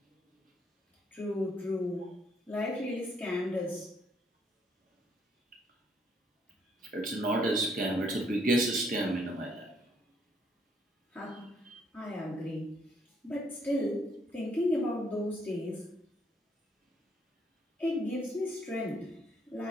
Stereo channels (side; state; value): both; normal; correlation 0.69